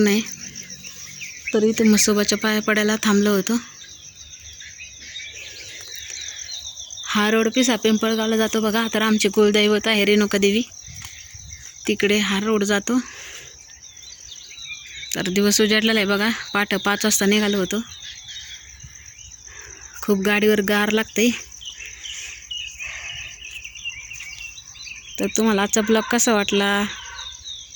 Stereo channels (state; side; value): identical; both; correlation 1.00